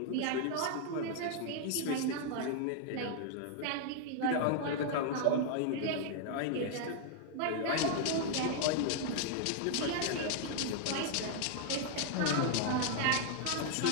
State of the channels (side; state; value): both; different; correlation 0.00